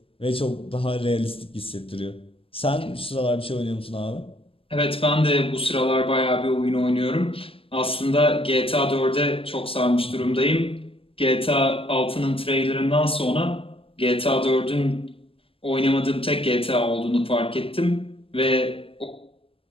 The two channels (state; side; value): late; right; 0.26 ms